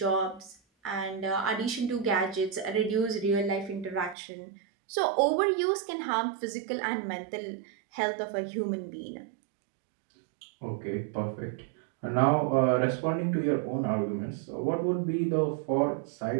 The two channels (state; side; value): drops out; left; at 4.2 s